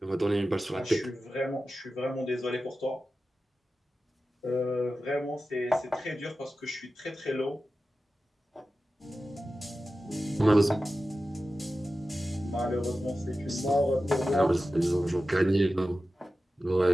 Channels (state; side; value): normal; both; correlation 0.94